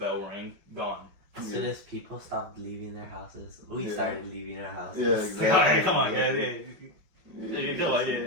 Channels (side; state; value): left; late; 5.4 ms